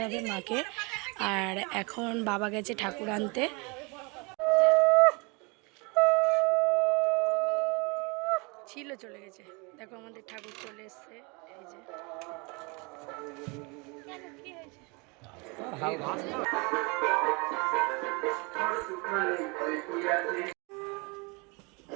হবে মাকে। আর এখন বাবা গেছে ঠাকুর আনতে। ছিল চলে গেছে, দেখো আমাদের ঠাকুর চলে এসছে। এই যে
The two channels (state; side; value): quieter; left; 29.5 dB